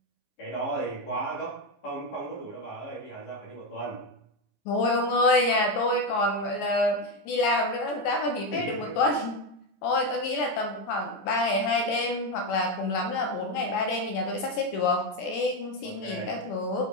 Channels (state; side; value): late; right; 14 ms